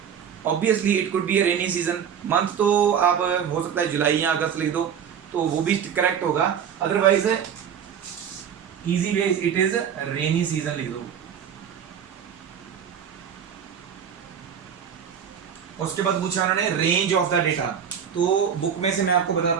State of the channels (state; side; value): quieter; left; 8.1 dB